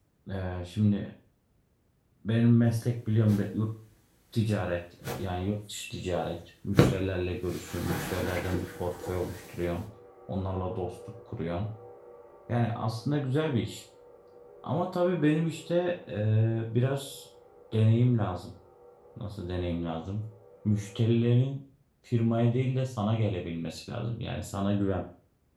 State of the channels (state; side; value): identical; both; correlation 1.00